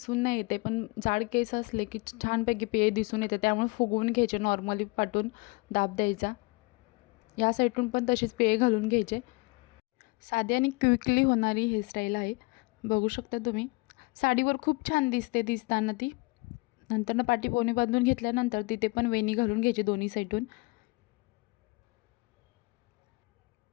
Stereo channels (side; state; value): right; quieter; 26.2 dB